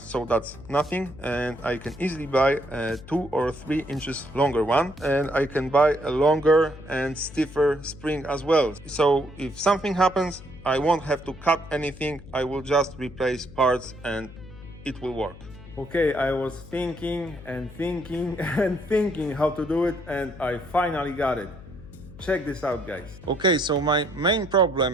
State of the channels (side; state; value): left; noise; hum, 17 dB below the sound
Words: that's nothing, and I can easily buy a 2 or 3 inches longer one, and I can buy a longer and stiffer spring as well. So if something happens, I won't have to cut anything, I will just replace parts and it will work. Okay, I was thinking and thinking and thinking how to do it, and I finally got it. Check this out, guys. Okay, so my main